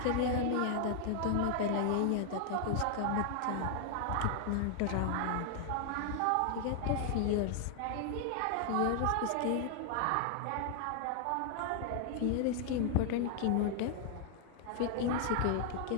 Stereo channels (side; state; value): both; different; correlation 0.00